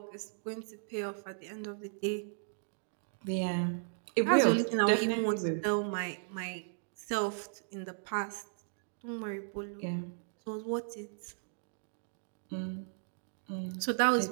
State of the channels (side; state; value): left; silent; digital silence